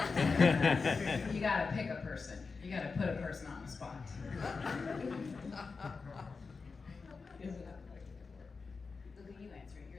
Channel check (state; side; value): quieter; right; 4.6 dB